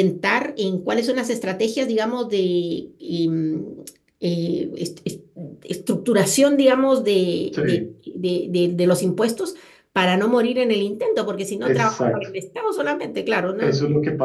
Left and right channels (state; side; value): identical; both; correlation 1.00